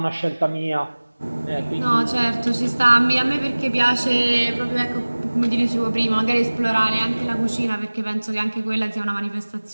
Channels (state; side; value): inverted; both; correlation -1.00